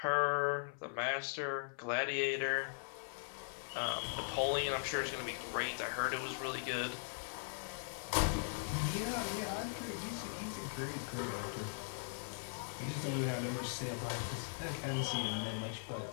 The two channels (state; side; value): silent; right; 51 dB below the other